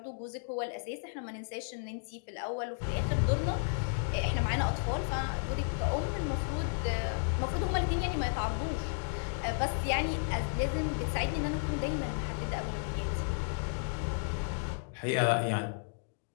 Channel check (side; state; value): right; silent; digital silence